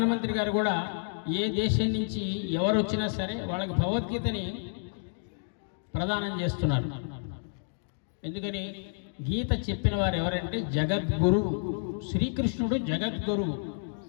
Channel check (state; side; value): silent; right; digital silence